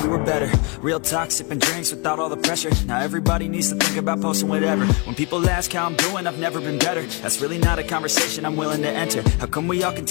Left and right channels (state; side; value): quieter; right; 32.3 dB